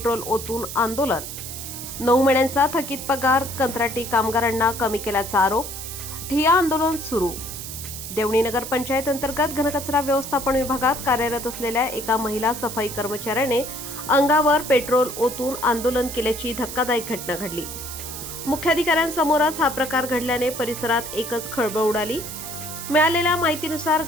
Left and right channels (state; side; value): noise; right; hiss, 9 dB below the sound